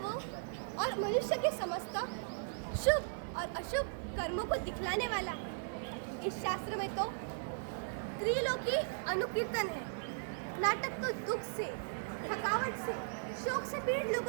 और मनुष्य के समस्त शुभ और अशुभ कर्मों को दिखलाने वाला है। इस शास्त्र में तो त्रिलोकी अनुकीर्तन है। नाटक तो दुख से, थकावट से, शोक से पीड़ित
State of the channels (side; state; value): left; silent; digital silence